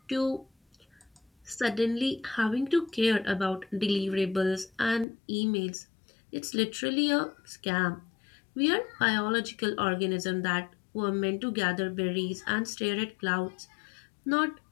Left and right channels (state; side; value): drops out; right; at 5.1 s